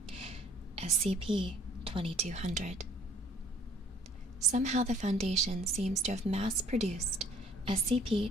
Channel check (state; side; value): normal; both; correlation 0.55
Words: SCP-2200. Somehow the Foundation seems to have mass-produced